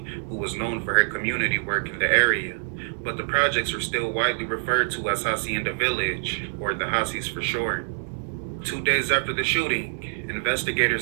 who was known for her community work in the area. But the projects are still widely referred to as Hacienda Village, or the Hacies for short. 2 days after the shooting,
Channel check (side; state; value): left; silent; 59 dB below the other